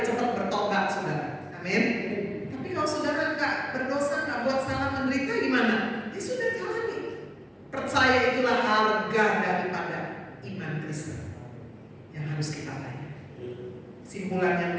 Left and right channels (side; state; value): both; identical; correlation 1.00